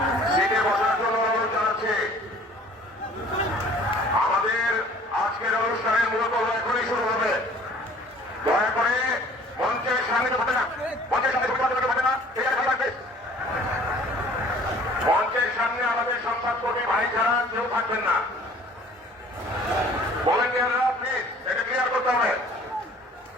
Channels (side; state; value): both; normal; correlation 0.52